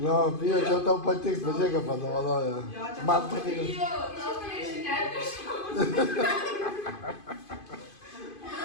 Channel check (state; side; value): late; right; 2.5 ms